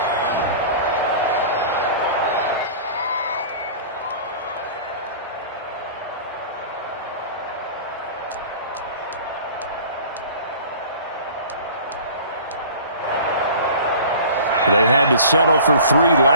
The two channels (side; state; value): both; inverted; correlation -0.42